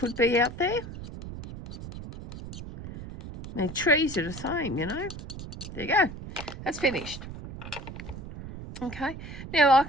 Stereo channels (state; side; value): noise; right; rumble, 11 dB below the sound